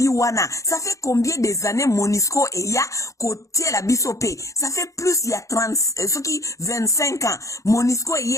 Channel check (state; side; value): late; right; 0.15 ms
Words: wana ça fait combien des années MONUSCO e ya côté la biso pe ça fait plus il y a 30 ce qui 25 ans MONUSCO